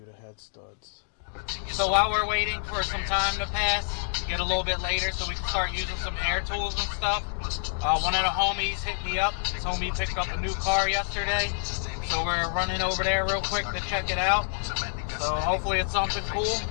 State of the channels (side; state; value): right; silent; digital silence